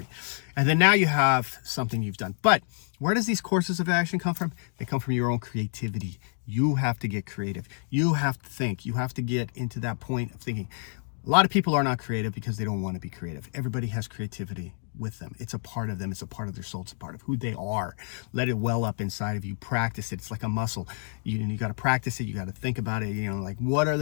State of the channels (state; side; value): silent; right; digital silence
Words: And then now you have something you've done. But where does these courses of action come from? They come from your own creativity. You have to get creative. You have to think. You have to get into that point of thinking. A lot of people are not creative because they don't want to be creative. Everybody has creativity with them. It's a part of them. It's a part of their soul. It's a part of who they are. Let it well up inside of you. Practice it. It's like a muscle. You got to practice it. You got to think about it. Like, what are